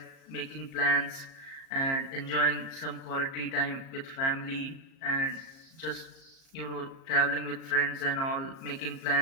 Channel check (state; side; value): late; right; 37 ms